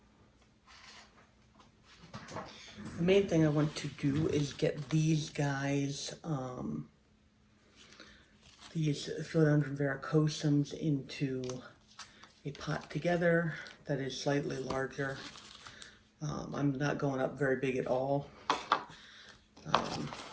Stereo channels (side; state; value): both; identical; correlation 1.00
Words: main thing I want to do is get these guys, these philodendron verrucosums into a pot together that is slightly larger. I'm not going up very big at all.